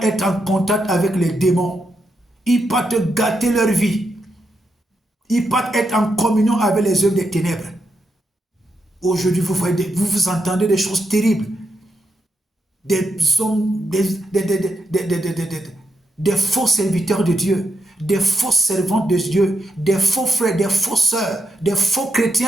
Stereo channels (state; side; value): normal; both; correlation 0.83